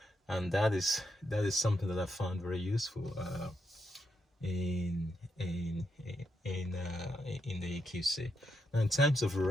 and that is something that I found very useful in the EQC. Now, in terms of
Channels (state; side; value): normal; both; correlation 0.82